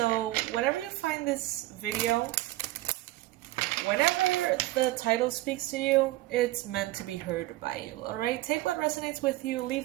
whenever you find this video, whenever the title speaks to you, it's meant to be heard by you, alright? Take what resonates with you,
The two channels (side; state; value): left; quieter; 17.6 dB